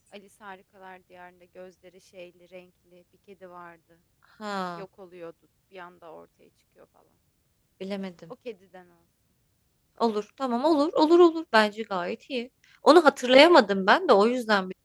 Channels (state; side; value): identical; both; correlation 1.00